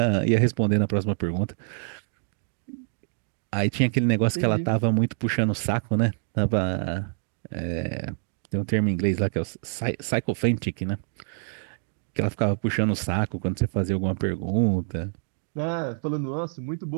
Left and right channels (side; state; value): left; silent; digital silence